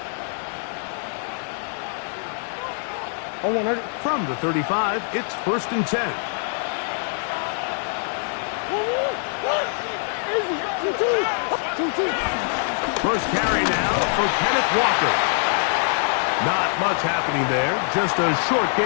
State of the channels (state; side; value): silent; right; 57 dB below the other